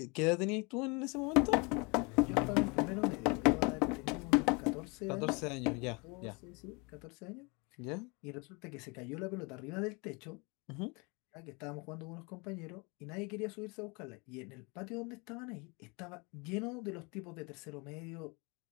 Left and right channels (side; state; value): right; quieter; 29.5 dB